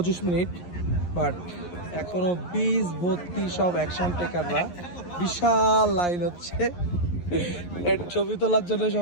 মিনিট, বাট এখনো বিচ ভর্তি সব অ্যাকশন টেকাররা। বিশাল লাইন হচ্ছে, ছবি তোলার জন্য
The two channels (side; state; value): right; late; 11 ms